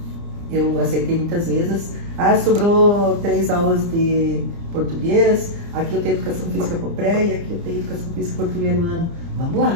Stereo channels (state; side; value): late; left; 30 ms